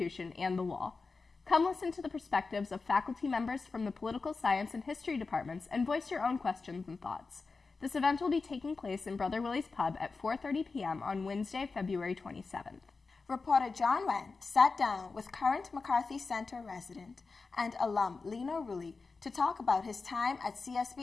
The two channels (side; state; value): right; quieter; 4.2 dB